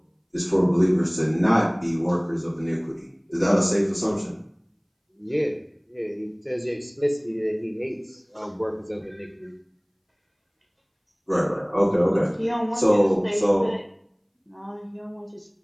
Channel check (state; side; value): identical; both; correlation 1.00